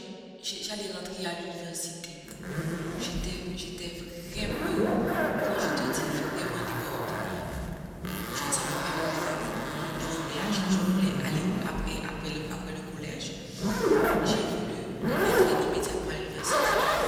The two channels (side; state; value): both; identical; correlation 1.00